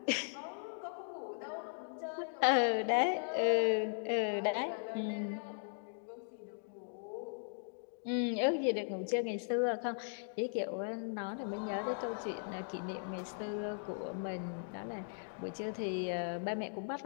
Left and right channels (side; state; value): right; silent; digital silence